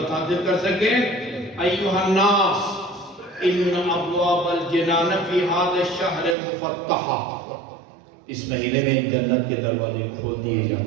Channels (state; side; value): drops out; left; at 6.4 s